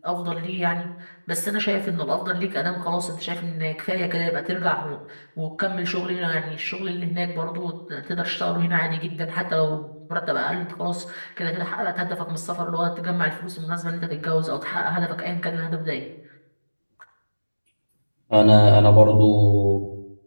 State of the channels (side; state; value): both; inverted; correlation -1.00